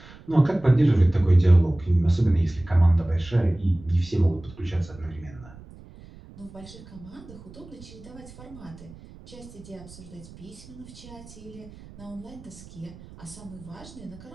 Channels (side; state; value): right; noise; rumble, 19 dB below the sound